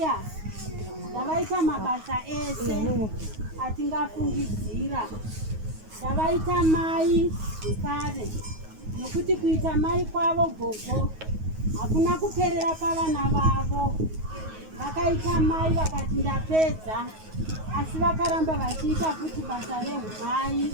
ndavaita mabasa ese atingafungidzira, ndavaita mai zvekare nekuti kuita mai kwavo gogo hakuna kuperera pavana vavo. Vakaita mai vakati ndapedza, asi vakaramba vachiita futi basa rehumai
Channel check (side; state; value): left; late; 9.4 ms